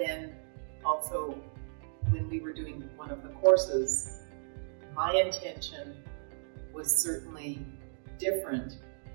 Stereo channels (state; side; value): silent; left; digital silence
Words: also, when we were doing one of the courses, my intention was certainly different.